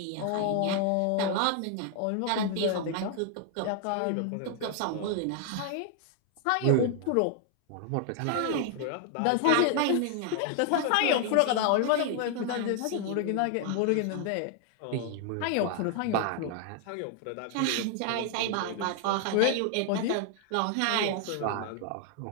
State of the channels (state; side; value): different; both; correlation 0.00